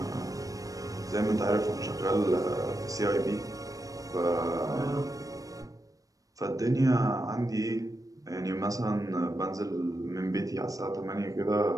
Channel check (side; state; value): left; late; 0.17 ms